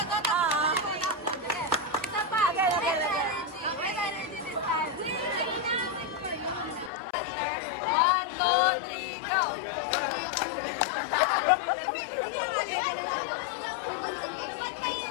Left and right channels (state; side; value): drops out; right; at 6.9 s